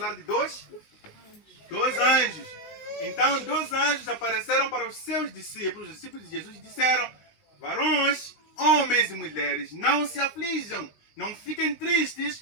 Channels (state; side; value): late; right; 19 ms